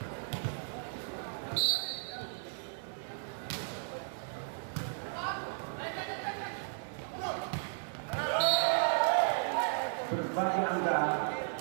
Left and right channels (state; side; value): silent; left; digital silence